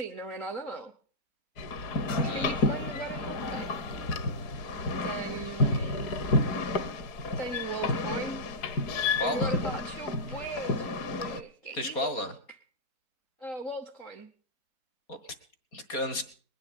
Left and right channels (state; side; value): late; right; 4.2 ms